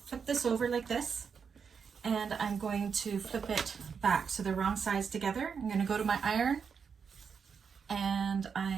flip this over like this, and I'm going to flip it back so they're wrong sides together. I'm going to go to my iron, and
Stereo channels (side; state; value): left; quieter; 6.3 dB